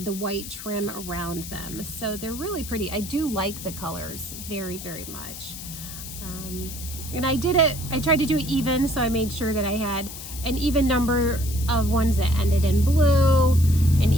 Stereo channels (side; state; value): left; noise; hiss, 11 dB below the sound